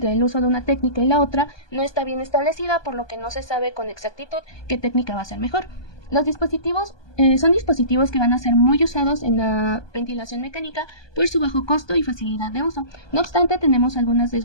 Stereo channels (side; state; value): right; late; 1.2 ms